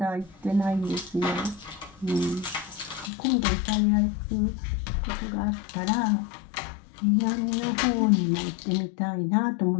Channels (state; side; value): drops out; right; at 3.1 s